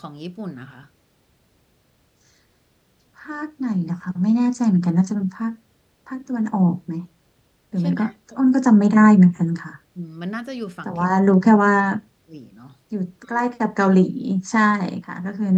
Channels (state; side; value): identical; both; correlation 1.00